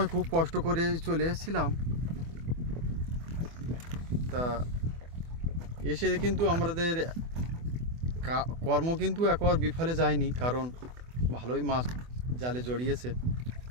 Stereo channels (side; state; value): left; late; 24 ms